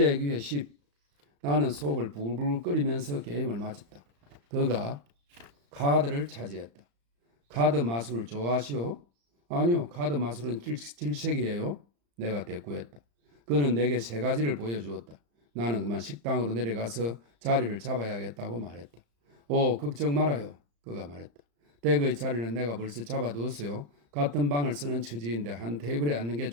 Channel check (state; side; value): late; left; 35 ms